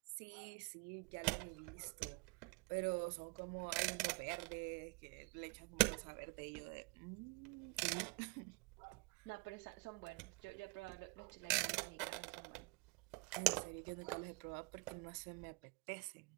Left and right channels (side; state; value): left; quieter; 28.4 dB